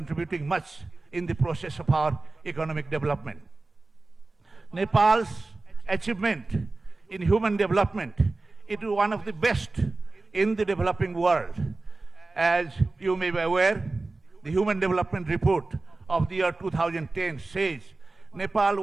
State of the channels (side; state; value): left; quieter; 3.3 dB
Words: much in the process of our economic development. Nepal's achievement in human development, it is one of the best in the developing world. As you may be aware, the Human Development Report of the year 2010 says